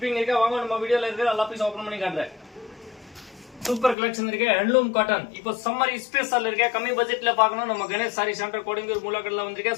இருக்கு. வாங்க நம்ம வீடியோல இருக்கு. எல்லா பீஸ் ஓபன் பண்ணி காட்டுறேன். சூப்பர் கலெக்ஷன் இருக்கு ஹேண்ட்லூம் காட்டன். இப்போ சம்மர் ஸ்பெஷல் இருக்கு. கம்மி பட்ஜெட்ல பார்க்கணும் நம்ம கணேஷ் சாரி சென்டர் கோடிங்கூர் மூலக்கடல வந்திருக்க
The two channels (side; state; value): right; drops out; at 4.0 s